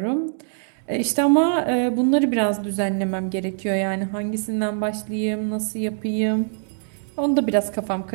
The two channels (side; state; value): left; silent; digital silence